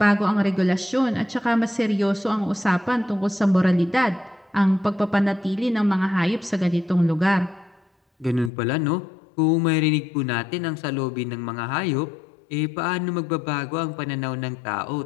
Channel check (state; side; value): drops out; right; at 8.5 s